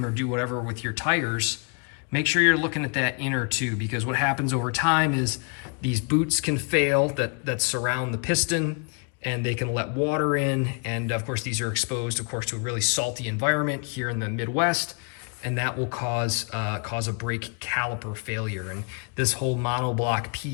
or do whatever with your tires, make sure you're looking at that inner tube, because what happens over time is these boots can fail that surround the piston, and they can let water in. And of course, these are exposed, to a really salty environment here in the Midwest, and that will cause a brake caliper failure. And this whole monoblock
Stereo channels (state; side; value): quieter; right; 36.4 dB